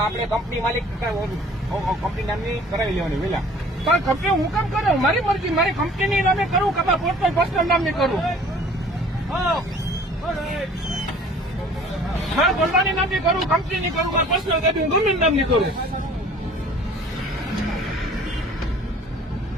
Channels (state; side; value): normal; both; correlation 0.50